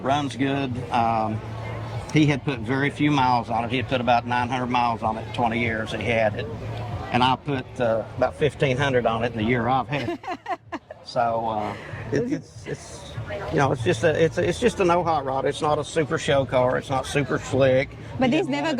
runs good. He had put very few miles on it. He had put about 900 miles on it in 20 years that he had it, and I put about 1,500 on it in the year I've had it. So it's you know, it's just a no hot rod. It's not a super show car. It's not super slick. But these never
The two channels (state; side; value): identical; both; correlation 1.00